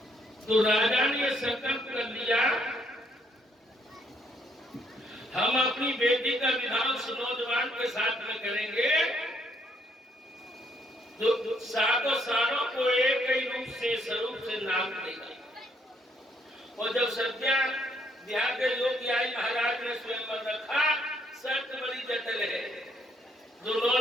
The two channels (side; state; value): both; normal; correlation 0.70